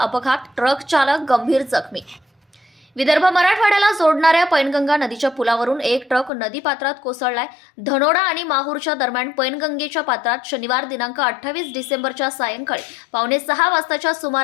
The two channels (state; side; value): drops out; right; at 6.3 s